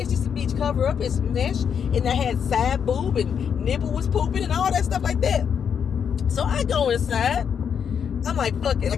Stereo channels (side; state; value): right; quieter; 7.5 dB